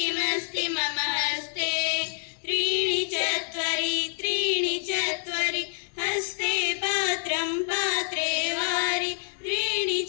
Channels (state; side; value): silent; right; digital silence